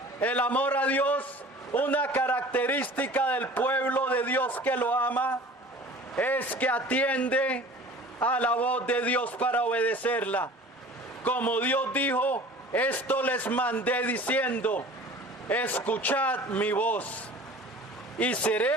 El amor a Dios, una característica del pueblo de Dios que lo ama, es que atiende a la voz de Dios para obedecerla. Como Dios dijo: esto les mandé diciendo: escuchad mi voz. y seré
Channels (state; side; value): normal; both; correlation 0.44